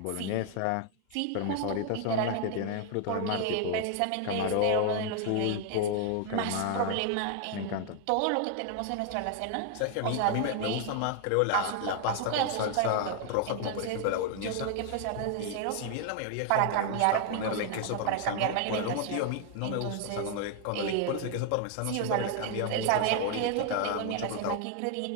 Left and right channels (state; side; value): different; both; correlation 0.00